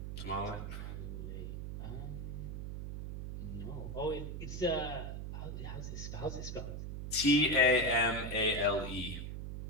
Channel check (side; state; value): right; noise; hum, 6 dB below the sound